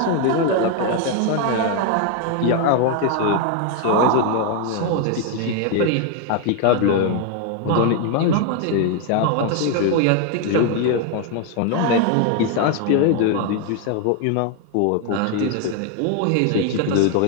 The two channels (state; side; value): different; both; correlation 0.01